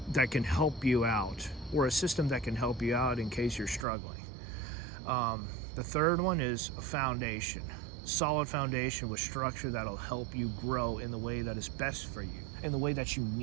that can help you out, or a system that can help you out in case you're struggling. The third one is a foundation. Solid foundation with structure that'll help you grow in the way that is best for you, in the way that you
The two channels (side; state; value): left; drops out; at 3.9 s